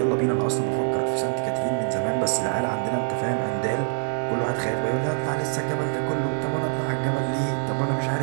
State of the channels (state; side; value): silent; left; digital silence